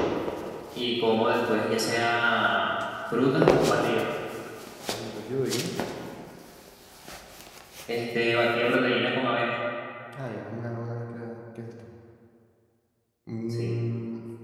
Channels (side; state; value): both; identical; correlation 1.00